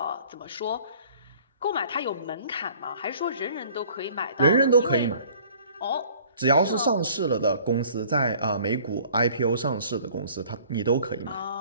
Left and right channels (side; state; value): both; inverted; correlation -0.53